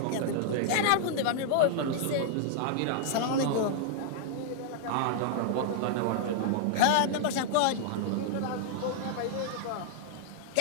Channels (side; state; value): both; different; correlation -0.01